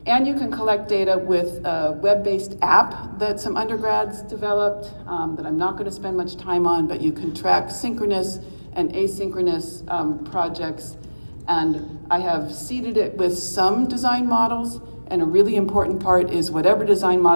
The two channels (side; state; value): both; inverted; correlation -1.00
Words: and you can collect data with a web-based app that some undergrads developed that I'm not going to spend much time on, but you can track synchronous and asynchronous projects. And I have seeded it with some design models, and a really important part is whatever design